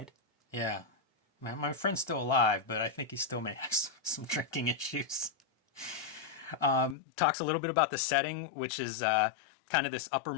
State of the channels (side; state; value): right; drops out; at 7.0 s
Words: Yeah, my friend's still alive, but I think he still may have some drinking issues. Talks a little bit about the setting, which is kind of this upper